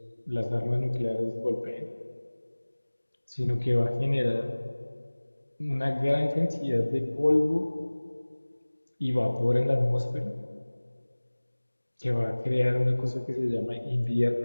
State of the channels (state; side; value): inverted; both; correlation -1.00